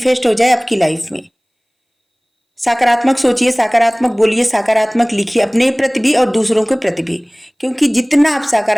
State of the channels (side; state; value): both; identical; correlation 1.00